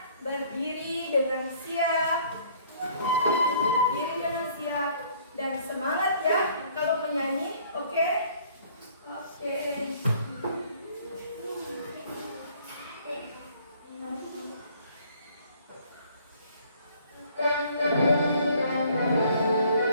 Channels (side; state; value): both; inverted; correlation -0.58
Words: berdiri dengan siap. Berdiri dengan siap dan semangat ya kalau menyanyi, oke? Oke.